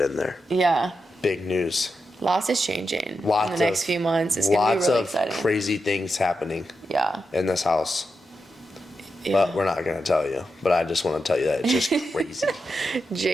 there. Big news. Lots is changing in the next few months. It's going to be really exciting. Lots of crazy things happening in this house. But we're not going to tell you. But I just want to tell you that it's just crazy.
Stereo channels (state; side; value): normal; both; correlation 0.87